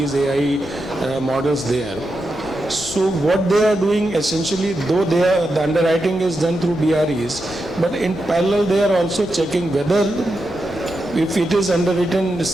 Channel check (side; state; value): both; normal; correlation 0.87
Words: AI models there. So what they are doing essentially, though the underwriting is done through BREs, but in parallel they are also checking whether if it is underwritten